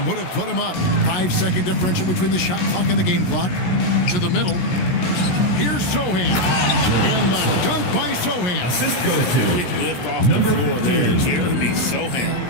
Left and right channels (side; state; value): right; late; 16 ms